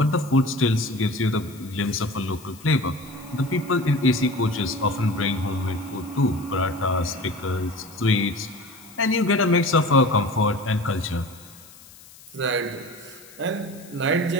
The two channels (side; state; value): left; noise; hiss, 22 dB below the sound